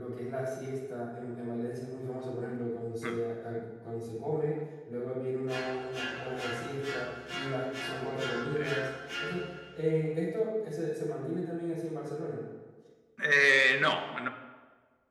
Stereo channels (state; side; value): identical; both; correlation 1.00